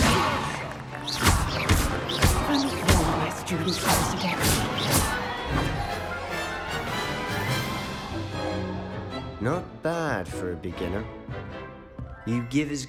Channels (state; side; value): identical; both; correlation 1.00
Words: Only four of my students pass it every. Not bad for a beginner. You give as